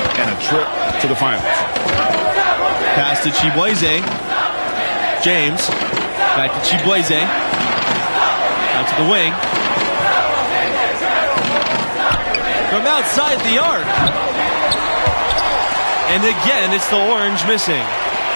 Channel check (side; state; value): both; inverted; correlation -1.00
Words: and a trip to the finals? Pass to Chibueze. James. Back to Chibueze. Out to the wing. From outside the arc. And again, it's the orange missing.